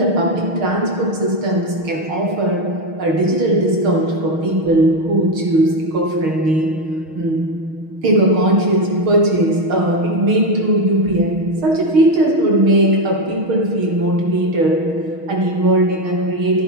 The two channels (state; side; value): late; left; 6.4 ms